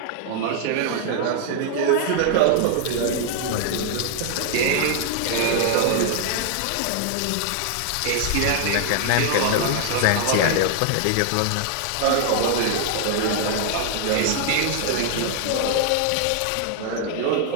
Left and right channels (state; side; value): different; both; correlation 0.00